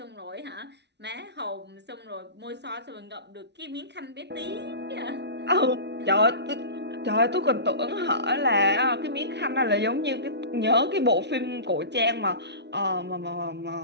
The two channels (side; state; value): left; late; 0.50 ms